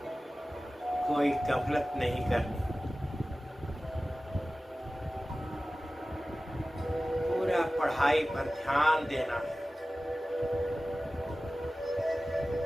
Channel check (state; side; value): normal; both; correlation 0.96